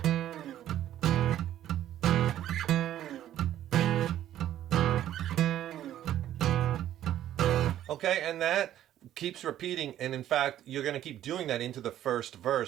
Okay, and that keeps repeating, and in fact, you're going to keep doing that into the first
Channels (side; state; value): left; quieter; 12.0 dB